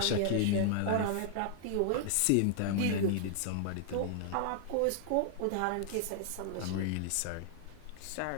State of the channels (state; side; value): different; both; correlation -0.01